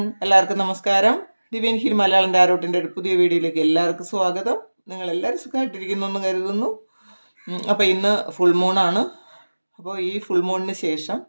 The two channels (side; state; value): both; inverted; correlation -1.00